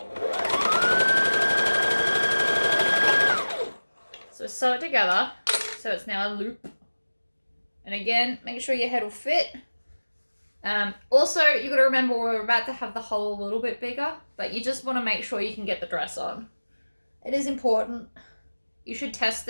So sew it together so it's now a loop. And again, make sure your head will fit. Also, you've got to remember we're about to have the hole a little bit bigger, but you just want to make sure you can get the dress on. It is important. You should test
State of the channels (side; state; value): both; inverted; correlation -1.00